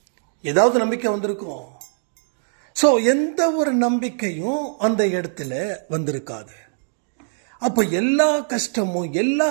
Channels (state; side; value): silent; left; digital silence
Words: ஏதாவது நம்பிக்கை வந்திருக்கும். ஸோ எந்த ஒரு நம்பிக்கையும் அந்த இடத்துல வந்திருக்காது. அப்போ எல்லா கஷ்டமும் எல்லா